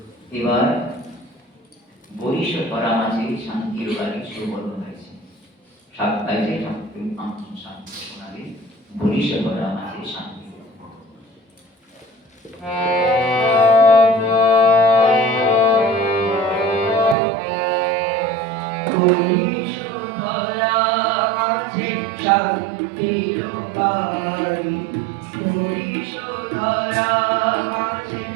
এবার বরিশ করা মাঝে শান্তির বাড়ি সুবর্ণ হয়েছে। সাতটায় যে ঠাকুর শান্তি শোনাবে, বরিশ করা মাঝে শান্তি। বরিশ করা মাঝে শান্তির বাড়ি, বরিশ করা মাঝে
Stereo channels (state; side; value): drops out; left; at 17.2 s